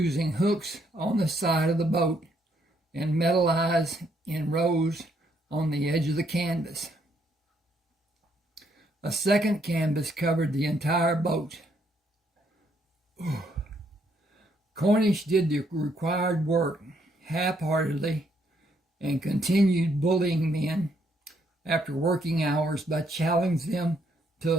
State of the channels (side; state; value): both; normal; correlation 0.72